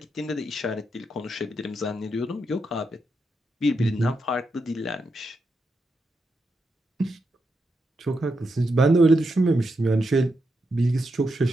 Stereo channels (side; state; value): both; normal; correlation 0.84